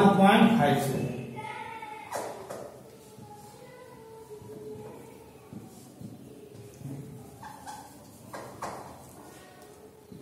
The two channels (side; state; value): both; identical; correlation 1.00